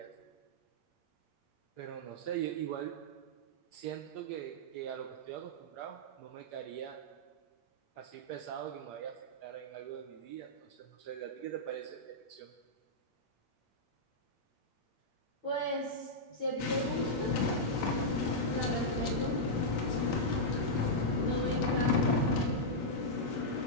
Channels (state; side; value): late; right; 8.6 ms